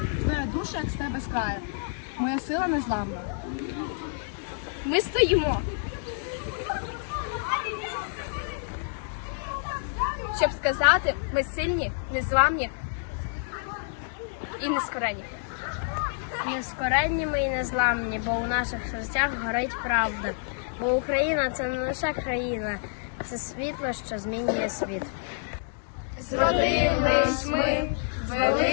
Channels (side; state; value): right; silent; 59 dB below the other